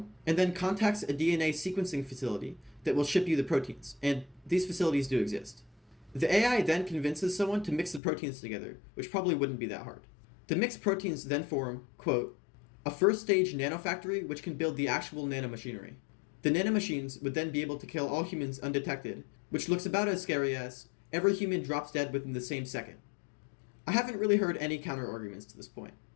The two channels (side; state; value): right; drops out; at 8.0 s